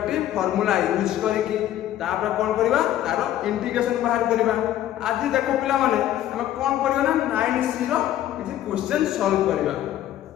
फार्मूला यूज करके तापर कोन करबा तारो इंटीग्रेशन बाहर करबा आज देखो पिला माने हम कोन करबा ना 9c रो किछि क्वेश्चन सॉल्व करबा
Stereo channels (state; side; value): quieter; right; 12.4 dB